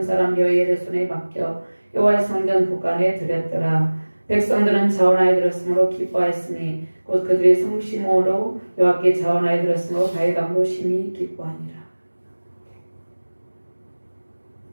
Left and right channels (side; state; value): both; inverted; correlation -1.00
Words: 사람 여이엘의 손에 맡겨 여호와의 성전 곳간에 드렸더라. 백성들은 자원하여 들었으므로 기뻐하였으니 곧 그들의 성심으로 여호와께 자원하여 들었으므로 다윗왕도 심히 기뻐하니라.